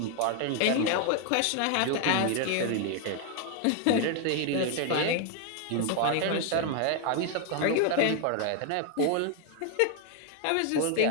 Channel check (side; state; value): both; different; correlation 0.00